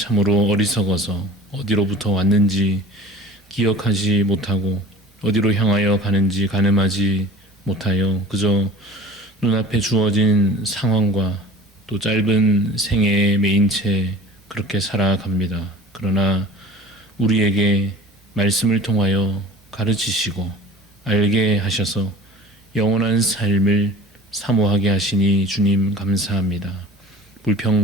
어리석어서 어디로부터 왔는지 기억하지 못하고 어디로 향하여 가는지 가늠하지 못하여 그저 눈앞에 주어진 상황과 또 짧은 생애에 매인 채 그렇게 살아갑니다. 그러나 우리에게 말씀을 통하여 가르치시고 알게 하셔서 영원한 삶을 사모하게 하시니 주님 감사합니다.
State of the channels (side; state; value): both; normal; correlation 0.43